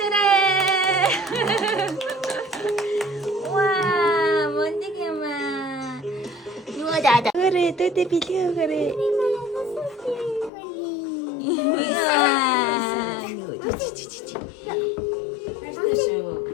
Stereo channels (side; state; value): right; drops out; at 10.5 s